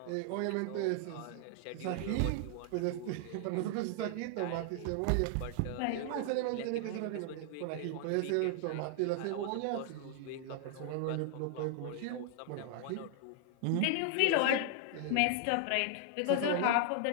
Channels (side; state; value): both; different; correlation 0.00